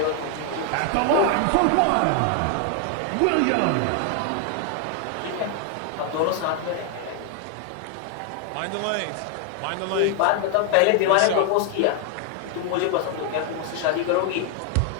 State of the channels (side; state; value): both; different; correlation 0.00